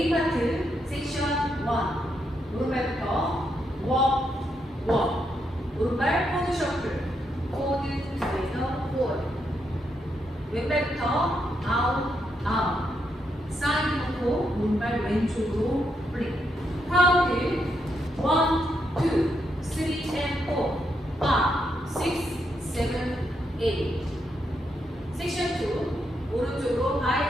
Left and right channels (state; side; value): normal; both; correlation 0.80